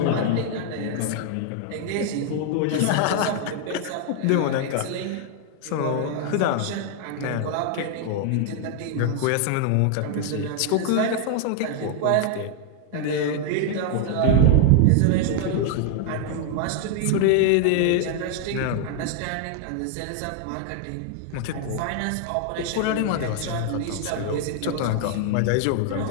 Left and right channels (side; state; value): both; different; correlation 0.00